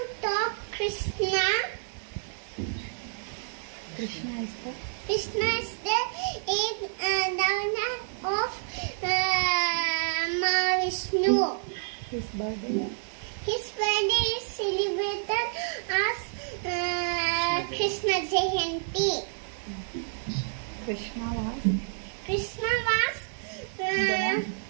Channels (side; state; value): left; silent; digital silence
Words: talk Krishna. Krishna is the Krishna is the eighth avatar of Mahavishnu. His birthday His birthday is celebrated as Krishna Jayanti. Krishna was Krishna was